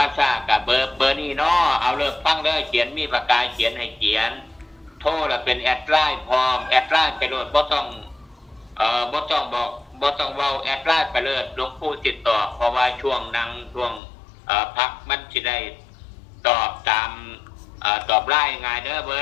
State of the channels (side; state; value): right; drops out; at 14.0 s